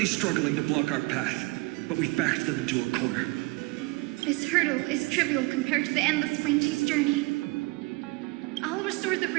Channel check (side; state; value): left; quieter; 24.8 dB